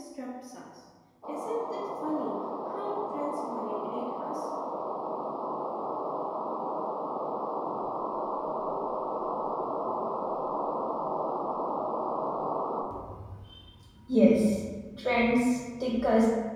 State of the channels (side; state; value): both; identical; correlation 1.00